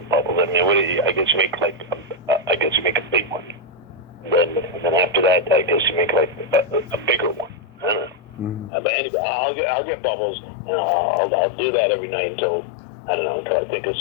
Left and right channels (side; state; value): right; drops out; at 8.7 s